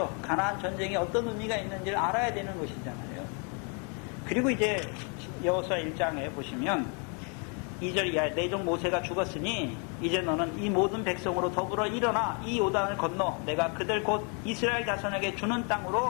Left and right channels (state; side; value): quieter; right; 37.4 dB